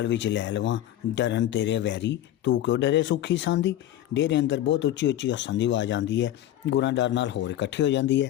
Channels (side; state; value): right; quieter; 12.7 dB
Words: ਵਿੱਚ ਲੈ ਲਵਾਂ, ਡਰਨ ਤੇਰੇ ਵੈਰੀ, ਤੂੰ ਕਿਉਂ ਡਰੇ ਸੁੱਖੀ ਸਾਂਦੀ। ਡੇਰੇ ਅੰਦਰ ਬਹੁਤ ਉੱਚੀ ਉੱਚੀ ਹੱਸਣ ਦੀ ਆਵਾਜ਼ ਆਉਂਦੀ ਹੈ। ਗੁਰਾਂ ਡਰ ਨਾਲ ਹੋਰ ਇਕੱਠੀ ਹੋ ਜਾਂਦੀ ਹੈ।